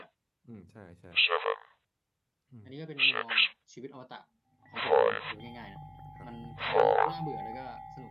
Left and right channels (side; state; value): both; identical; correlation 1.00